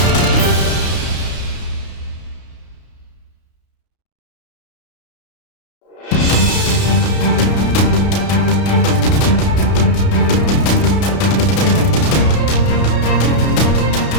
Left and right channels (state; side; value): late; right; 32 ms